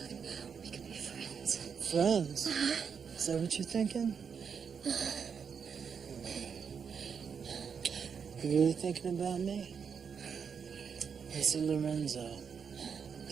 We can be friends. Friends? Is that what you're thinking? You really thinking about me? Listen, Lorenzo, it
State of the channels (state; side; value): quieter; left; 6.6 dB